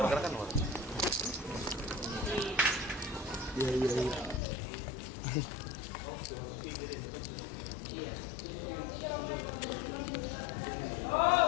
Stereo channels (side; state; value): right; drops out; at 4.4 s